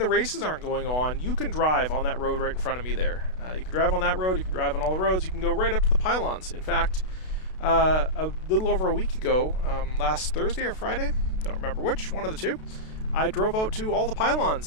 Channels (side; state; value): right; late; 32 ms